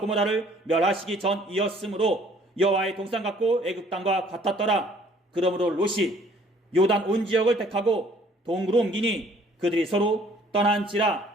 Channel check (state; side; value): normal; both; correlation 0.58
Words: 고모라를 멸하시기 전이었으므로 여호와의 동산 같고 애굽 땅과 같았더라. 그러므로 롯이 요단 온 지역을 택하고 동으로 옮기니 그들이 서로